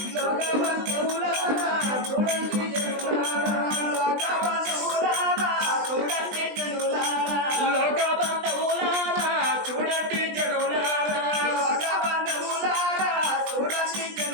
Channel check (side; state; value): left; late; 20 ms